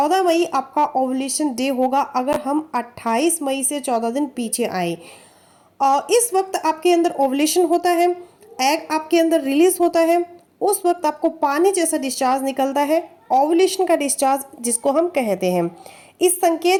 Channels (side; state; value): both; identical; correlation 1.00